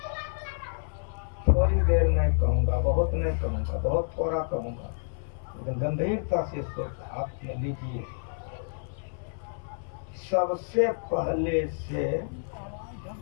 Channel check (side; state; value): right; silent; 59 dB below the other